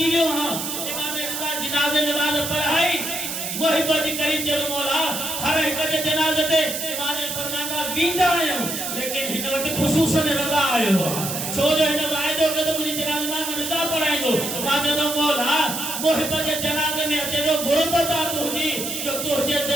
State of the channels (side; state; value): right; noise; hiss, 4 dB below the sound